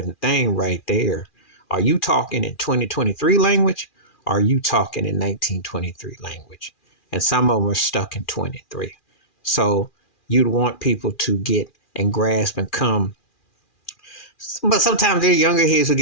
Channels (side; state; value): right; late; 2.4 ms